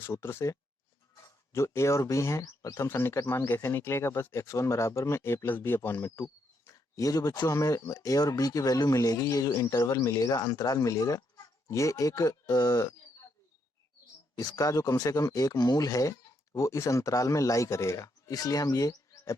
से। जो a और b हैं, प्रथम सन्निकट मान कैसे निकलेगा, बस x1 बराबर में a प्लस बी अपॉन में 2। ये जो बच्चों हमें a और b की वैल्यू मिलेगी, ये जो इंटरवल मिलेगा, अंतराल मिलेगा, ये एक इसका जो कम से कम एक मूल है वो इस अंतराल में लाई करेगा, इसलिए हम ये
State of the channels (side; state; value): both; normal; correlation 0.77